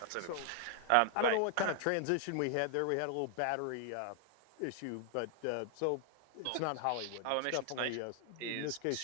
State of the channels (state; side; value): different; both; correlation 0.00